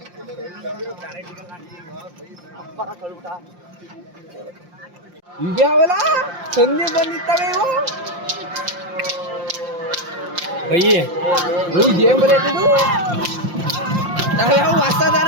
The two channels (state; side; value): late; left; 5.7 ms